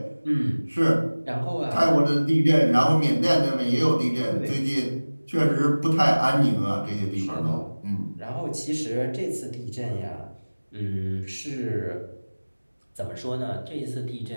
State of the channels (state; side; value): inverted; both; correlation -1.00